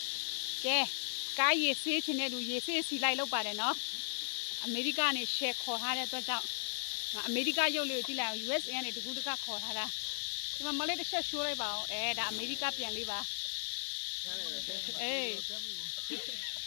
ကဲကားရည်ဆေးချင်တဲ့လူရည်ဆေးစီလိုက်လောက်ပါတယ်နော်အမေရိကနေရှယ်ခေါ်ထားတဲ့အတွက်ကြောင့်အမေရိကရုပ်လေးကိုကြည့်လိုက်အောင် USA ကနေတကူတကခေါ်ထားတာဒီမှာမလေးတစ်ချက်ရှိုးလိုက်ပါအောင်ဒါအမေရိကပြန်လေးပါအေး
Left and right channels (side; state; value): right; silent; digital silence